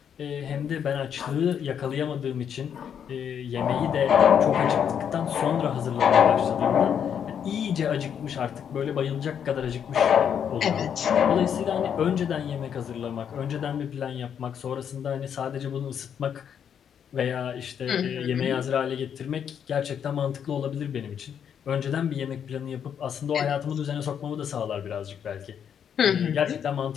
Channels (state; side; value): quieter; right; 8.3 dB